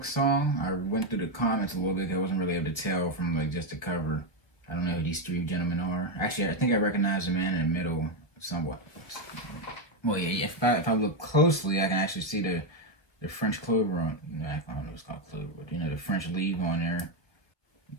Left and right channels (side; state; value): right; late; 1.0 ms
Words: song. I went through the comments a little bit. I wasn't really able to tell from like just the cover. I don't know who these three gentlemen are. Actually, I think I recognize the man in the middle somewhat. Well, yeah, if I look closely, I can actually see the French clover on. I don't know what's called clover, but the French leaf on there.